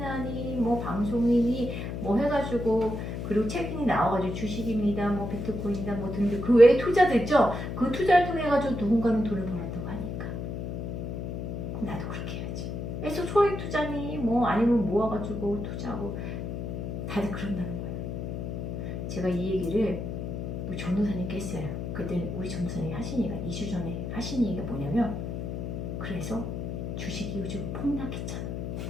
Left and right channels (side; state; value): left; noise; hum, 4 dB below the sound